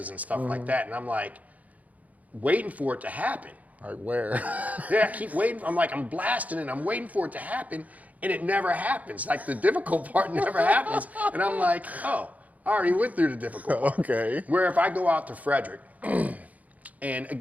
and stuff like that. And I'm like, waiting for it to happen. Like where? Yeah, I keep waiting. I'm blasting and I'm waiting for it to happen, and it never happens. Like the difficult part never happens, and I'm like, oh, I already went through the difficult part. Okay. Where if I go out to Frederick, and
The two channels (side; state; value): left; late; 0.074 ms